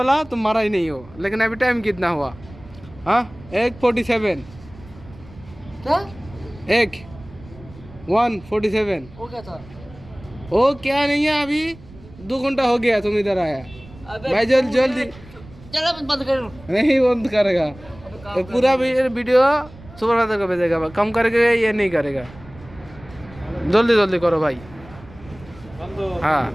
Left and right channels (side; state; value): right; noise; rumble, 20 dB below the sound